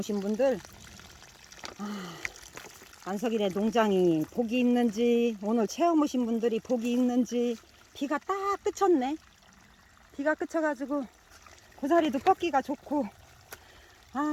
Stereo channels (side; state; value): both; identical; correlation 1.00